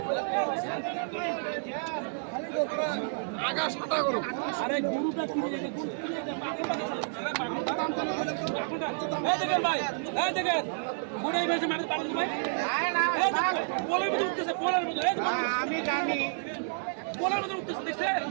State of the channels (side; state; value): left; silent; digital silence